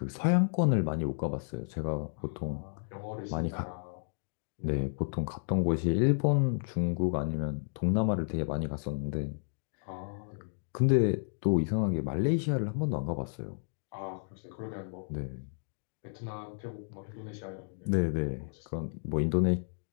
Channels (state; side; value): silent; right; digital silence